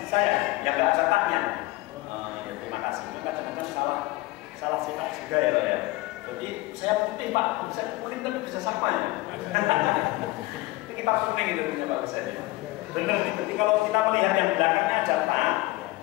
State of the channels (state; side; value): quieter; right; 20.1 dB